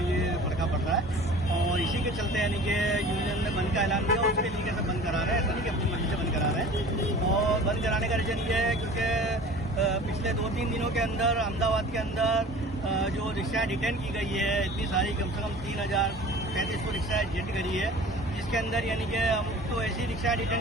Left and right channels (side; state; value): both; normal; correlation 0.42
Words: ये फड़का पड़ रहा है। और इसी के चलते यानी कि यूनियन ने बंद का ऐलान दिया, उसके तरीके से बंद करा रहे हैं, ऐसा नहीं कि अपनी मर्जी से बंद करा रहे हैं। और बंद कराने का रीजन ये है क्योंकि पिछले 2-3 दिनों के अंदर अहमदाबाद के अंदर जो रिक्शा डिटेन की गई है, इतनी सारी कम से कम 3035 रिक्शा डिटेन करी है, जिसके अंदर यानी कि हम तो ऐसी रिक्शा